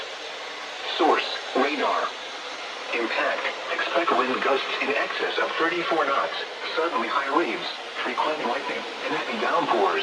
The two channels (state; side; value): identical; both; correlation 1.00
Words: Source, radar. Impact, expect wind gusts in excess of 34 knots, suddenly high waves, frequent lightning, and heavy